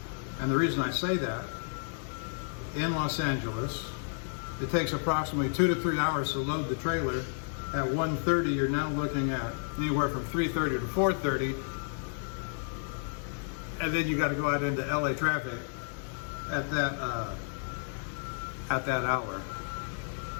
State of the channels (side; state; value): right; silent; digital silence